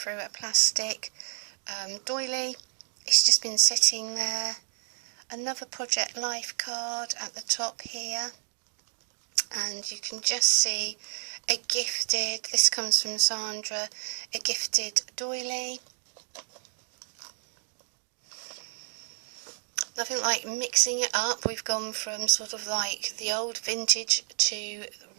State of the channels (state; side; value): silent; left; digital silence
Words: a plastic doily. It's just been sitting there. Another Project Life card at the top here, and you can just see a gifted, this comes from Sandra, a gifted doily. Nothing like mixing it up. We've gone from sort of like the old vintage to